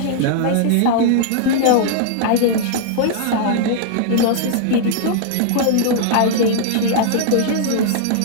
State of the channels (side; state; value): both; different; correlation -0.01